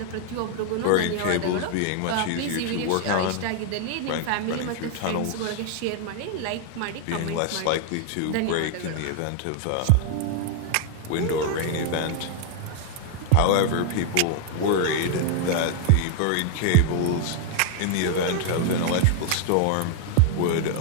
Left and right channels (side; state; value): both; different; correlation 0.00